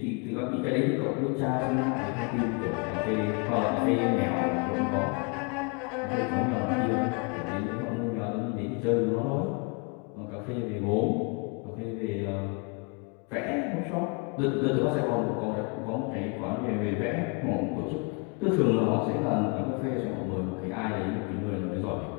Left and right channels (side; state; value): right; quieter; 32.1 dB